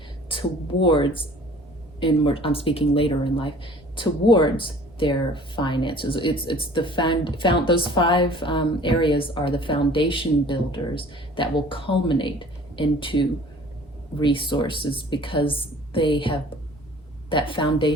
towards, I'm speaking later in life, towards their finances. It's the those 5 areas are the foundation builders that will culminate into resources, because they have that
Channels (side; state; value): both; normal; correlation 0.49